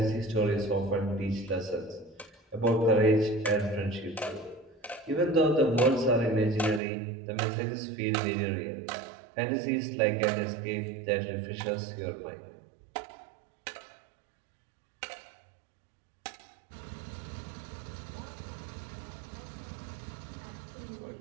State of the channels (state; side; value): drops out; left; at 6.8 s